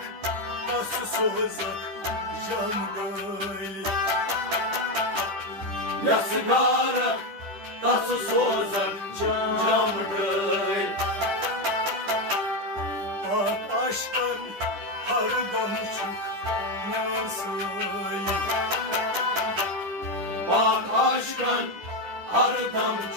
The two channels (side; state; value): left; late; 10 ms